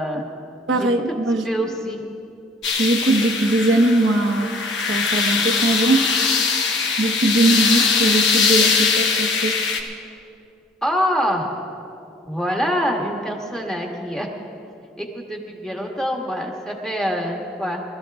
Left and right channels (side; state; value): both; normal; correlation 0.54